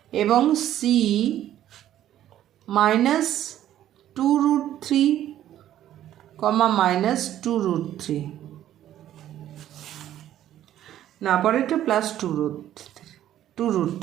এবং সি -2√3, -2√3, না পরেরটা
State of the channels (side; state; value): left; quieter; 12.0 dB